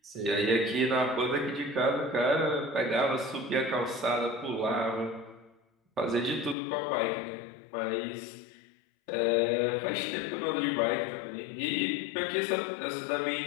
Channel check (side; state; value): right; drops out; at 6.6 s